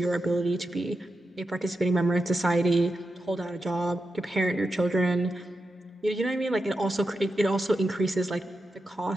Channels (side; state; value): both; normal; correlation 0.89